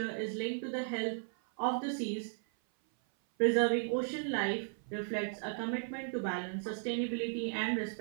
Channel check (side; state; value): left; silent; 54 dB below the other